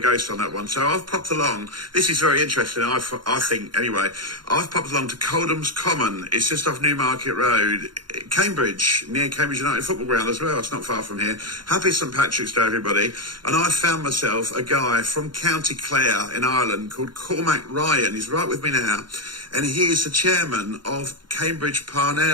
on that one. So I've popped along. This is very interesting, I think, anyway. I've popped along to Coldham's Common. It's just off Newmarket Road, Cambridge, near Cambridge United Football Ground as well. It's not far from here. Happy St. Patrick's Day, everybody. And I found myself a guy from County Clare in Ireland called Cormac Ryan. He's right with me now. And he is the chairman of Cambridge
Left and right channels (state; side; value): late; left; 0.71 ms